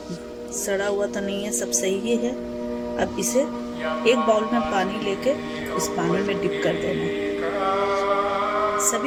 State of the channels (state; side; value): identical; both; correlation 1.00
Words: सड़ा हुआ तो नहीं है, सब सही ही है। अब इसे एक बाउल में पानी लेके इस पानी में डिप कर देना है।